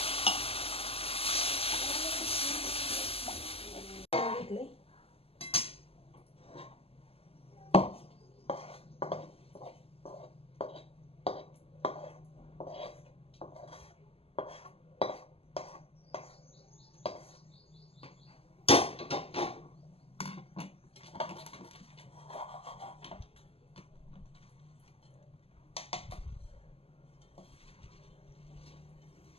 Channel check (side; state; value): right; late; 0.28 ms